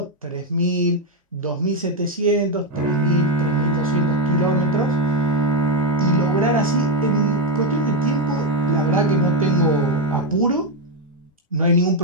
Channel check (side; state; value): both; normal; correlation 0.06